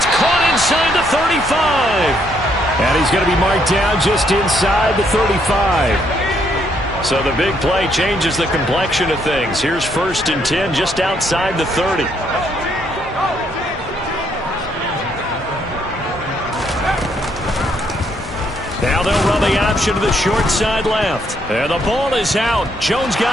caught inside the 35. And he's going to be marked down just inside the 35. So the big play changes the complexion of things. Here's 1st and 10 just outside the 30. Now they'll run the option to the short side left. And the ball is out. Jones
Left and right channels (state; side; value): normal; both; correlation 0.72